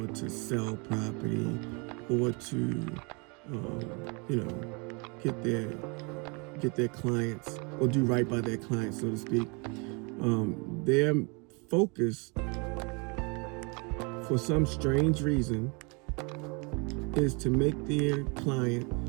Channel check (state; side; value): quieter; left; 31.9 dB